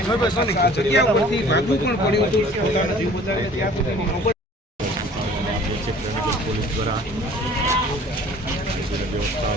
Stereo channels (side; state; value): both; normal; correlation 0.50